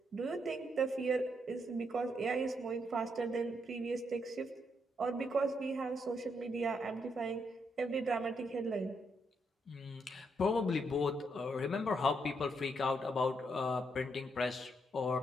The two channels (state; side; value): normal; both; correlation 0.77